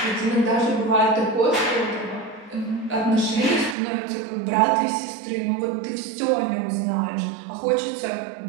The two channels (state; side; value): drops out; left; at 3.8 s